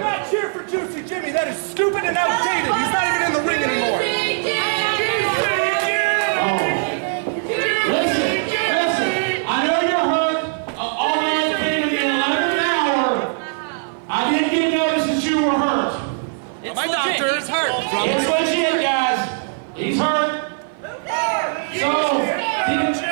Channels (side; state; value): left; silent; 56 dB below the other